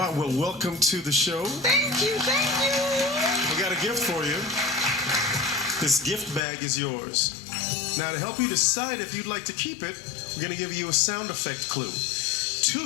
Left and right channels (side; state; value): right; drops out; at 6.5 s